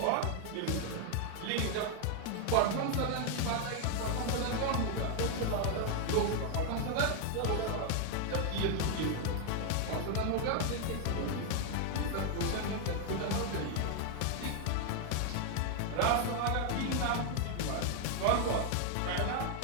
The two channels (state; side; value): different; both; correlation 0.00